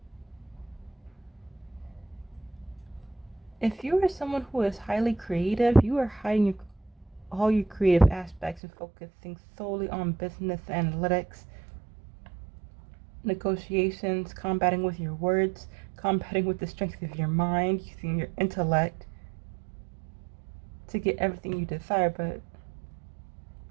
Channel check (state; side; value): drops out; left; at 8.6 s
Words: If you are someone who is highly creative, you are hiding all your creative aspects and focusing solely on business analytics, negotiations, combating with your words, combating with the strength of your mind, using your intellect to get everything you desire. But